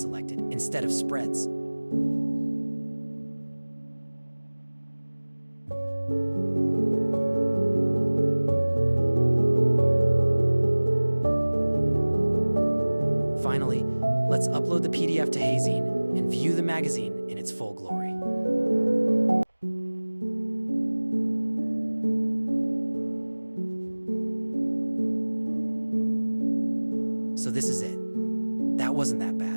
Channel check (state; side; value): inverted; both; correlation -1.00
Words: selected instead of spreads. Finally, let's upload the PDF to hazing and view the magazine in its full glory. So this is it. That wasn't that